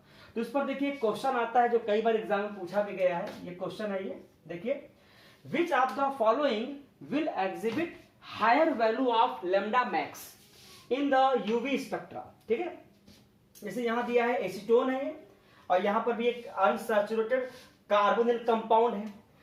तो इस पर देखिए क्वेश्चन आता है जो कई बार एग्जाम में पूछा भी गया है। ये क्वेश्चन है, ये देखिए which of the following will exhibit higher value of lambda max in the UV spectra, ठीक है। जैसे यहां दिया है एसीटोन है और यहां पर भी एक अनसैचुरेटेड कार्बोनिल कंपाउंड है।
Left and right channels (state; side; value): identical; both; correlation 1.00